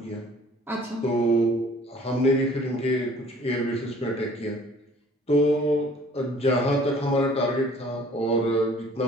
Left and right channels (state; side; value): normal; both; correlation 0.54